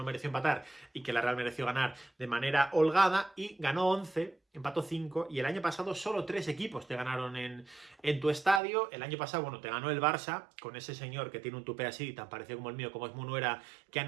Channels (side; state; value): left; drops out; at 8.6 s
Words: mereció empatar y que la Real mereció ganar de manera holgada, y ganó 11, empató 5, y el año pasado solo 3 equipos te ganaron en tu estadio. El año pasado, bueno, te ganó el Barça, con ese señor que tiene un tupé así, tan parecido como el mío, como es Munuera, que